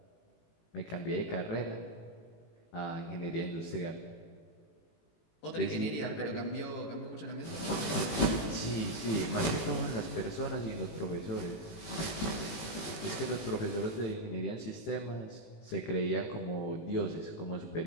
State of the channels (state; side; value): late; right; 18 ms